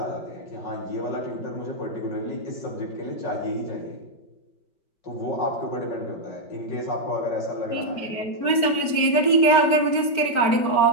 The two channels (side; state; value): right; late; 5.2 ms